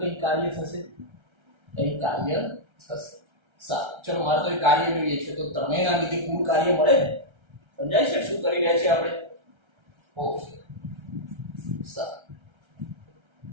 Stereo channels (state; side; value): late; left; 1.3 ms